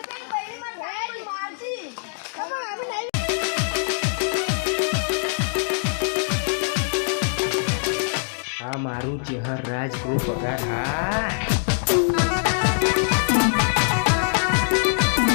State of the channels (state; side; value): silent; right; digital silence